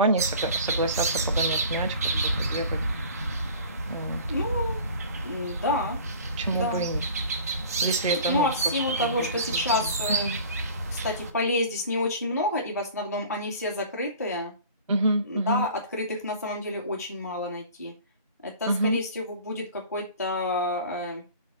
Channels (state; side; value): inverted; both; correlation -0.43